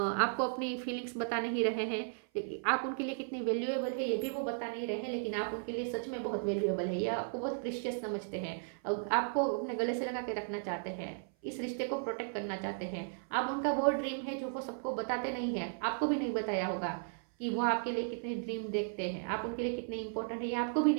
अपनी feelings बता नहीं रहे हैं, लेकिन आप उनके लिए कितनी वैल्यूएबल है ये भी वो बता नहीं रहे हैं, लेकिन आप उनके लिए सच में बहुत वैल्यूएबल है, या आपको बहुत प्रीशियस समझते हैं, आपको अपने गले से लगा के रखना चाहते हैं, इस रिश्ते को प्रोटेक्ट करना चाहते हैं। आप उनका वो ड्रीम है जो वो सबको बताते नहीं है, आपको भी नहीं बताया होगा कि वो आपके लिए कितने ड्रीम देखते हैं, आप उनके लिए कितने इंपॉर्टेंट है, ये आपको भी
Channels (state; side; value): silent; left; 54 dB below the other